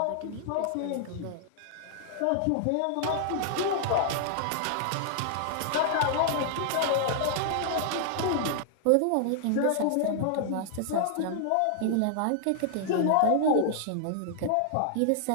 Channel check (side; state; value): both; different; correlation -0.01